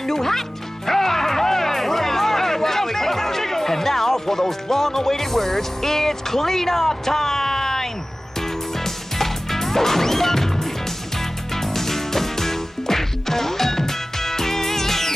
new hat? And now, for those long-awaited words, it's cleanup time!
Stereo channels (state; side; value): normal; both; correlation 0.97